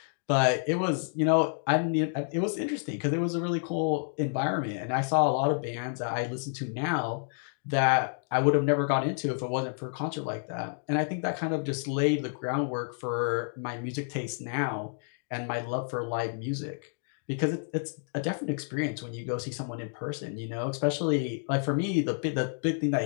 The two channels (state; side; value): silent; right; digital silence